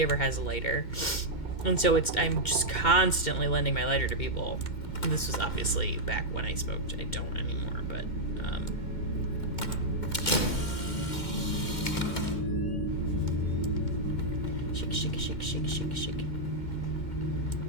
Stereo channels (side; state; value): right; late; 2.1 ms